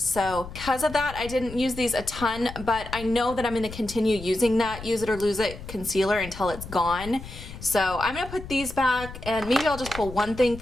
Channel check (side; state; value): left; noise; rumble, 13 dB below the sound